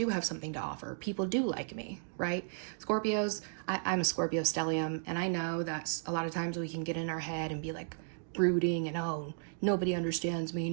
have something to offer. People do like me, right? Scorpios, I'm a Scorpio stellium, and I know that a lot of times we can get in our head and be like brooding and, oh, nobody understands me,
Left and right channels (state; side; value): silent; left; digital silence